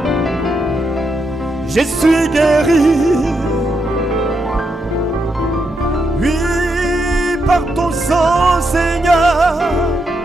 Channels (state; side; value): normal; both; correlation 0.81